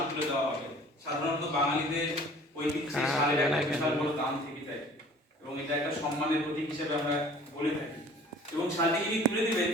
তুলে দেওয়া হবে। সাধারণত বাঙালিদের ঐতিহ্যে শালের একটা বিশাল বড় দাম থেকে থাকে এবং এটা একটা সম্মানের প্রতীক হিসেবে আমরা বলে থাকি। এবং শালটি যিনি তুলে দিবেন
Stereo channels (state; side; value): normal; both; correlation 0.49